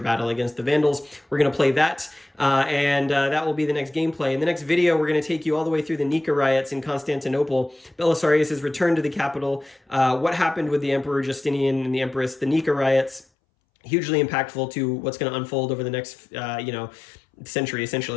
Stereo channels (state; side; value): drops out; right; at 13.2 s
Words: against the Vandals. We're going to play that, and that will be the next gameplay. In the next video, we're going to take you all the way through the Nika riots in Constantinople, Belisarius' return to the capital, what happened with the Emperor Justinian and the Empress, the Nika riots, hugely impactful to what's going to unfold over the next, century,